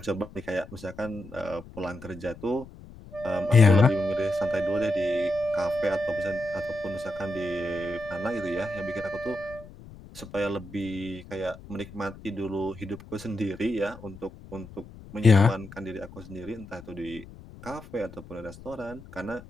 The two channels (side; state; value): left; noise; rumble, 17 dB below the sound